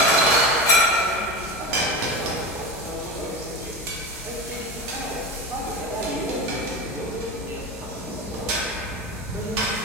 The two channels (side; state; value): left; noise; hum, 16 dB below the sound